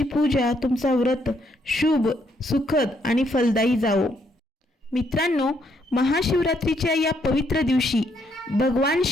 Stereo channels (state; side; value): normal; both; correlation 0.73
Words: पूजा, तुमचा व्रत शुभ, सुखद आणि फलदायी जावो. मित्रांनो, महाशिवरात्रीच्या या पवित्र दिवशी भगवान